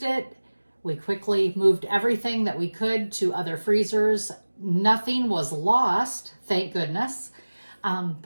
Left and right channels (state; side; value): inverted; both; correlation -1.00